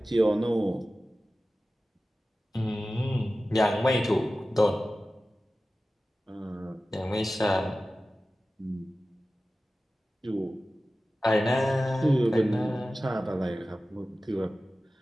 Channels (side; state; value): both; normal; correlation 0.95